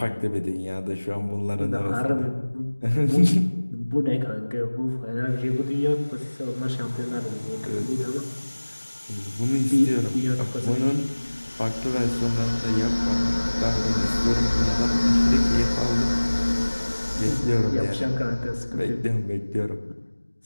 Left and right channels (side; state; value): both; inverted; correlation -1.00